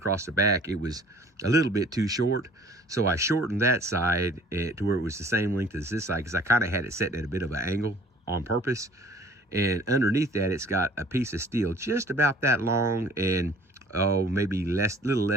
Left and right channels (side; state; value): both; normal; correlation 0.52